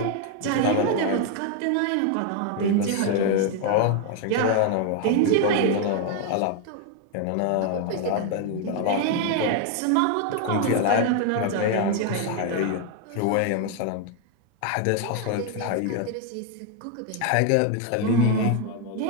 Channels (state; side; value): different; both; correlation 0.01